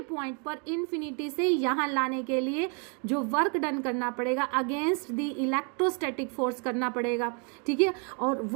पॉइंट पर इन्फिनिटी से यहाँ लाने के लिए जो वर्क डन करना पड़ेगा अगेंस्ट द इलेक्ट्रोस्टैटिक फोर्स करना पड़ेगा. ठीक है, और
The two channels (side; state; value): left; quieter; 37.4 dB